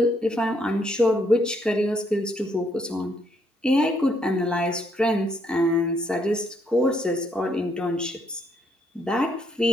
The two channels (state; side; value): normal; both; correlation 0.72